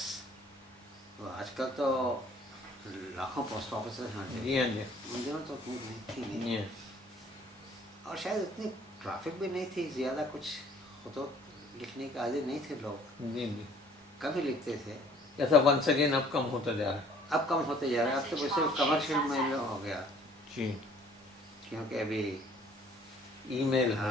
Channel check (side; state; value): both; normal; correlation 0.57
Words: تو آج کل تو لاکھوں پوسٹ آفیسز ہیں. جی ہاں جی ان دنوں تو اتنی تھی نہیں, جی اور شاید اتنی ٹرافک بھی نہیں تھی زیادہ. کچھ خطوط لکھنے کے عادی نہیں تھے لوگ, جی جی کم ہی لکھتے تھے. ایسا ونس اگین اب کم ہوتا جا رہا ہے. اب کم ہوتے جا رہے ہیں. اب تو صرف کمرشل میں ہو گیا, جی کیونکہ ابھی ای میل ہے,